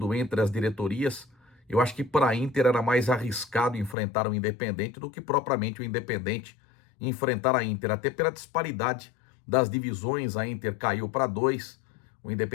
entre as diretorias. Eu acho que para a Inter era mais arriscado enfrentar o Independente do que propriamente o Independente enfrentar a Inter, até pela disparidade das divisões. A Inter caiu para 2, o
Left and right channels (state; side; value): drops out; right; at 4.0 s